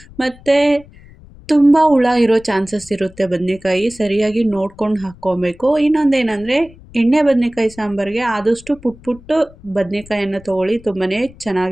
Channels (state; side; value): noise; left; rumble, 22 dB below the sound